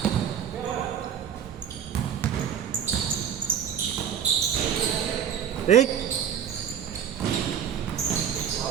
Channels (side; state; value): left; quieter; 8.7 dB